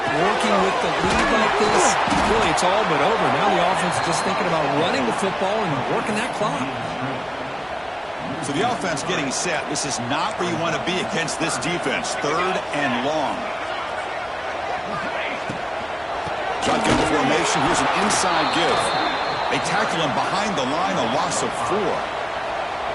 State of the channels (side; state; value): both; identical; correlation 1.00